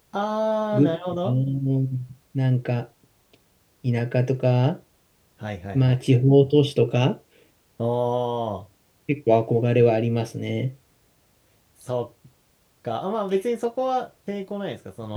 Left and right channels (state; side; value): identical; both; correlation 1.00